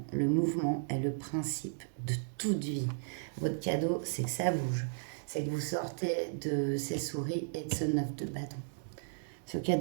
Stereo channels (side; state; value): left; silent; digital silence